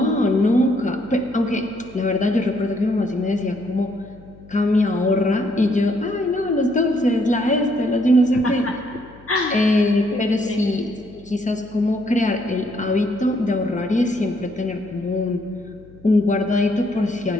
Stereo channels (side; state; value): left; noise; hum, 23 dB below the sound